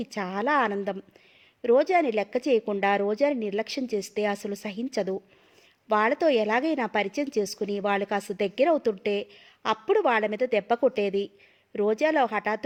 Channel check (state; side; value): identical; both; correlation 1.00